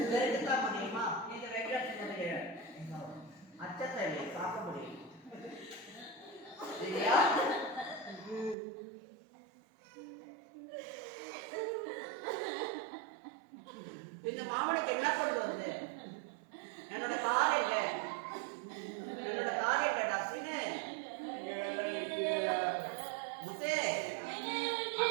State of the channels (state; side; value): drops out; left; at 8.6 s